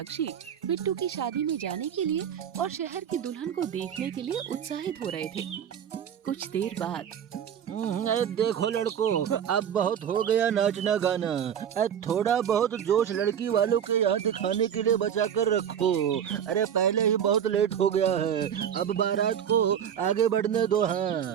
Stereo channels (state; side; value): quieter; left; 8.8 dB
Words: बिट्टू की शादी में जाने के लिए और शहर की दुल्हन को देखने के लिए उत्साहित हो रहे थे। कुछ देर बाद देखो लड़कों, अब बहुत हो गया नाचना गाना। थोड़ा बहुत जोश लड़की वालों के यहाँ दिखाने के लिए बचा कर रखो। अरे पहले ही बहुत लेट हो गया है, अब बारात को आगे बढ़ने दो।